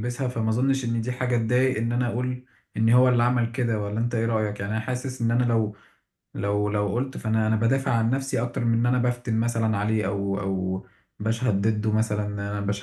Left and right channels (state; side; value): identical; both; correlation 1.00